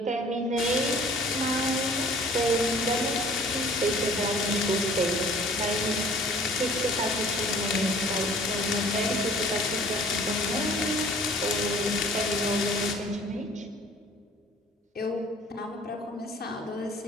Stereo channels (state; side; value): normal; both; correlation 0.52